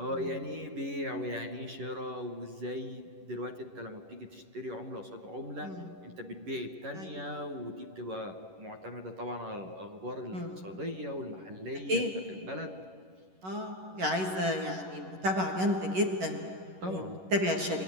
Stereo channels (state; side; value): late; left; 11 ms